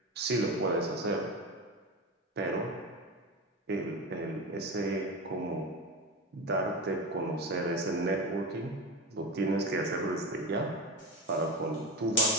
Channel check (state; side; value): normal; both; correlation 0.22